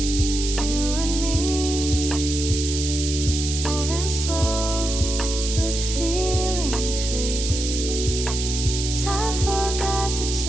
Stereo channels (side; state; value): right; noise; hiss, 4 dB below the sound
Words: you and me, moving slow but feeling free. Time forgot to